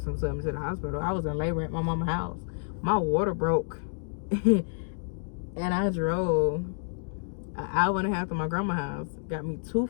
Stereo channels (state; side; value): silent; right; digital silence